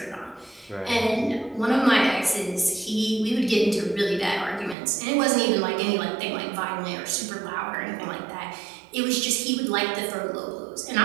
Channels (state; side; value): drops out; left; at 4.8 s